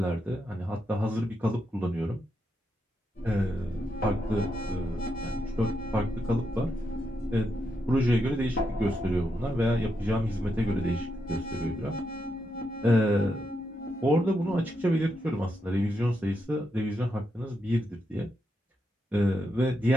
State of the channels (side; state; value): both; normal; correlation 0.82